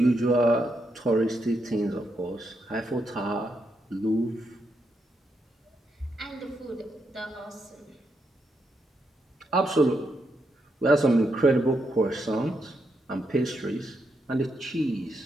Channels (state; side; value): normal; both; correlation 0.81